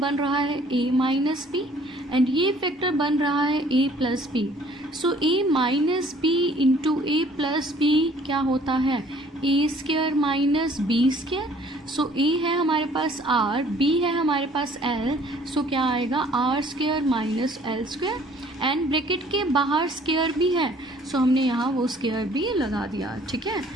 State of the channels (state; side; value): normal; both; correlation 0.56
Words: रहा है a माइनस बी एंड ये फैक्टर बन रहा है a plus b. So a minus b into a plus b क्या होता है, a square minus b square. So a है हमारे पास r, b है हमारे पास l, सो क्या आएगा r square minus L square and bracket के बाहर स्क्वायर भी है, सो हमने यहाँ वो स्क्वायर भी लगा दिया, ठीक है।